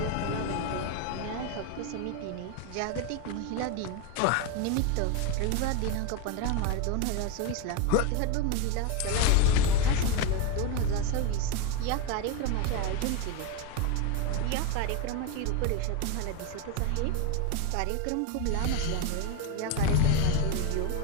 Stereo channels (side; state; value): both; different; correlation 0.02